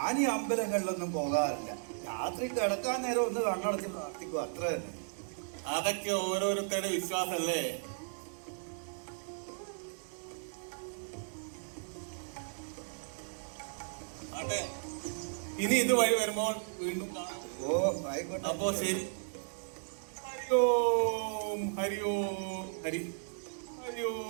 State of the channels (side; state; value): left; silent; digital silence